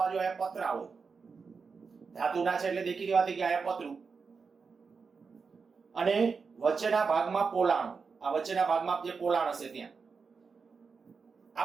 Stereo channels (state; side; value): quieter; left; 5.1 dB